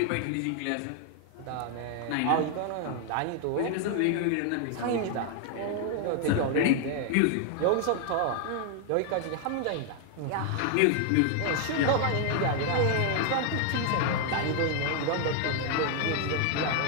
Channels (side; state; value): both; different; correlation 0.00